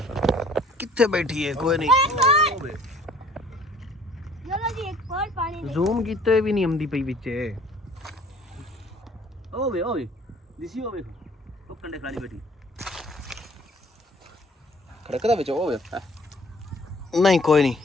ਕਿੱਥੇ ਬੈਠੀ ਹੈ ਕੋਈ ਨਹੀਂ चलो जी एक और पानी दे ਜ਼ੂਮ ਕੀਤੇ ਵੀ ਨਹੀਂ ਆਉਂਦੀ ਪਈ ਵਿੱਚ ਓਏ ਦਿਸੀ ਹੋਵੇ ਉਹ ਕੰਡੇ ਖਾਲੀ ਬੈਠੀ ਖੜਕਦਾ ਵਿੱਚ ਹੋਵੇ ਨਹੀਂ ਕੋਈ ਨਹੀਂ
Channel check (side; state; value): both; normal; correlation 0.55